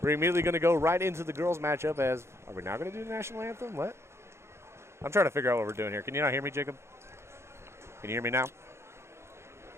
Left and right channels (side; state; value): left; late; 0.13 ms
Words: immediately going to go right into the girls' matchup. As are we now going to do the national anthem? What? I'm trying to figure out what we're doing here. Can you not hear me, Jacob? Can you hear me now?